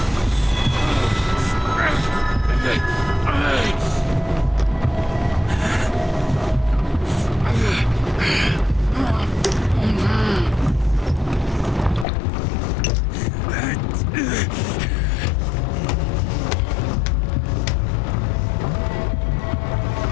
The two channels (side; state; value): right; drops out; at 12.1 s